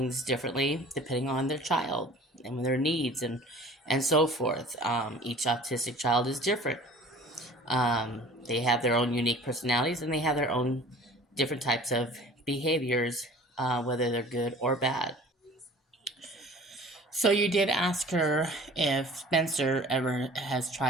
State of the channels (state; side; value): normal; both; correlation 0.45